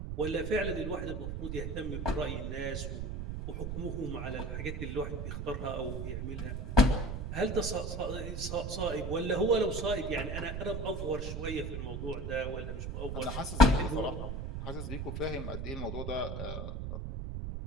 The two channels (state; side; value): noise; right; rumble, 4 dB below the sound